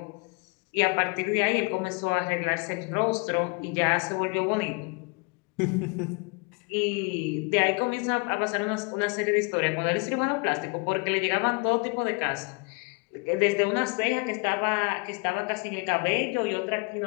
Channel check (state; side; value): quieter; right; 31.7 dB